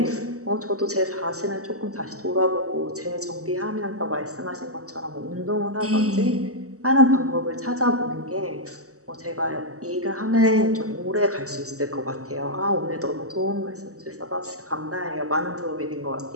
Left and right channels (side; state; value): left; late; 0.65 ms